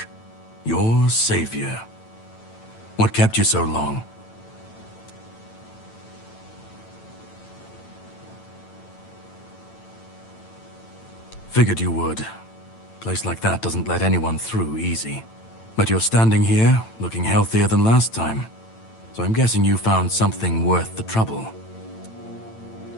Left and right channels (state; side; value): late; right; 9.0 ms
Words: your savior. What kept you so long? Figured you would. A place like that doesn't let anyone through easy. But you're standing here, looking healthier than last time. So I'm guessing you found something worth the trouble.